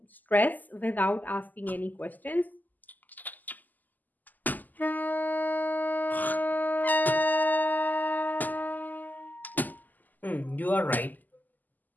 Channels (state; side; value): late; right; 0.084 ms